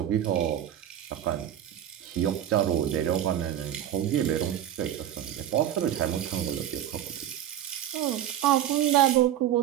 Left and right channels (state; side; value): quieter; left; 11.2 dB